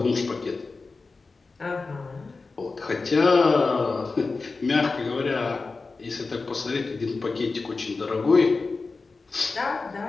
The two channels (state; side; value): quieter; right; 4.0 dB